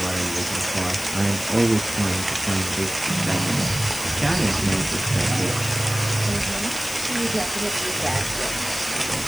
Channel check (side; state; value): left; noise; hiss, 9 dB below the sound